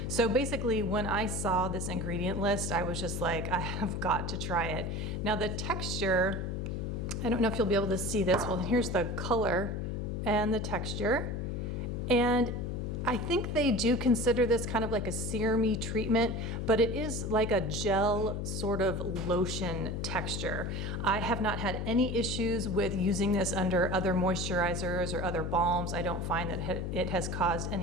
So basically, when I saw this ingredient list, I was just like, I have got to try it. Now the texture, I don't know if you'll be able to see this. Well, here's the color and the texture. And I think they do consider this kind of like a serum-y treatment, but it is like a gel sort of lotion texture. I have not had any issues with using this under other moisturizers or other balms. I don't find that it has caused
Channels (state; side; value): noise; left; hum, 2 dB below the sound